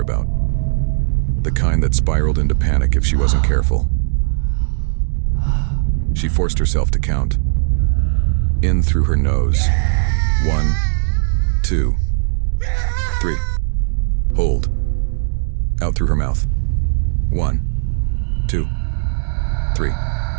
The kind that spiraled into panic if she wasn't careful. She forced herself to count. In through her nose. 1, 2, 3. Hold. Out through her mouth. 1, 2, 3.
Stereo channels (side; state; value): left; silent; digital silence